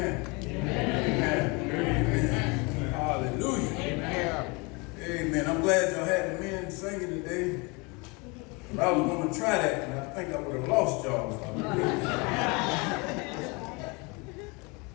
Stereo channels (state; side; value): quieter; right; 28.5 dB